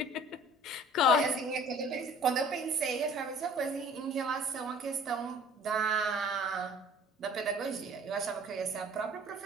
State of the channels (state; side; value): normal; both; correlation 0.50